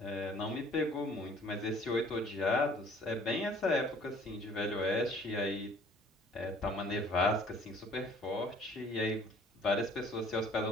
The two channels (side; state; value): both; normal; correlation 0.55